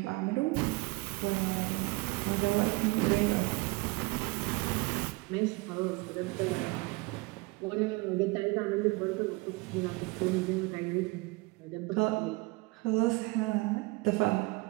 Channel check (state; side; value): quieter; left; 24.1 dB